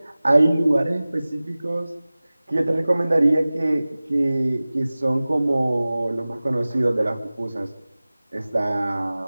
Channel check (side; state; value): both; inverted; correlation -0.98